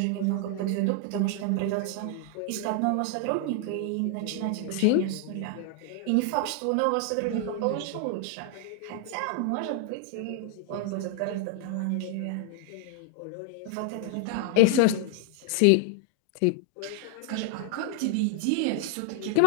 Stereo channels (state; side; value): different; both; correlation 0.00